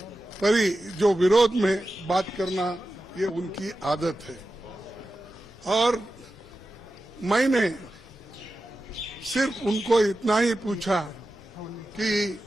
जो विरोध में बात करना, ये उनकी आदत है। और मैंने सिर्फ उनको इतना ही पूछा कि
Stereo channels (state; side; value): normal; both; correlation 0.92